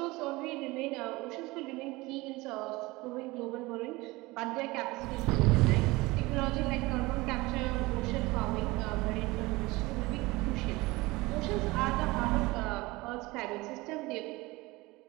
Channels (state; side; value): quieter; left; 21.7 dB